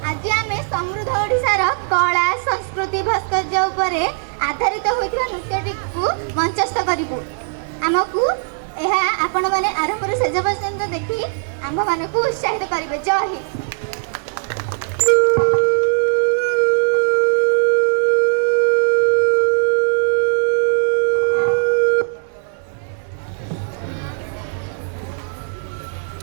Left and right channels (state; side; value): silent; left; digital silence